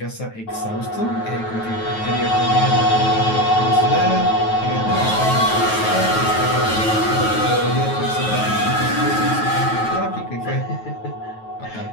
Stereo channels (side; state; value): right; late; 9.2 ms